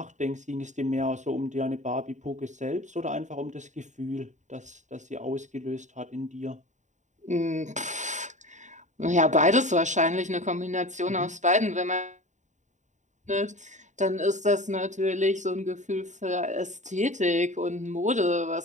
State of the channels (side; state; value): left; late; 0.35 ms